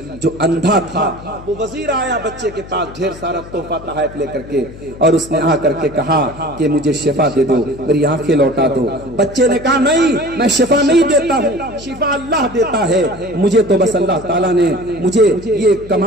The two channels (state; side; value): noise; left; hum, 16 dB below the sound